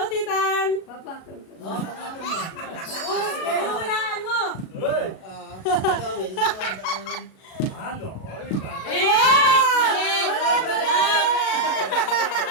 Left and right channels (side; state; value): right; late; 37 ms